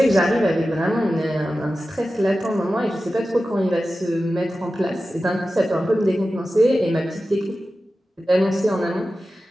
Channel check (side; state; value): both; normal; correlation 0.94